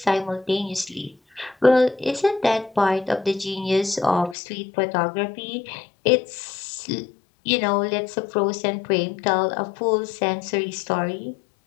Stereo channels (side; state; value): right; drops out; at 4.4 s